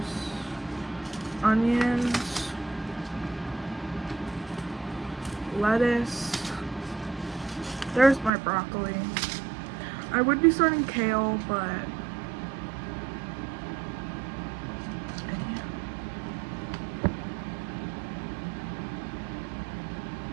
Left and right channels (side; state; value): left; drops out; at 8.3 s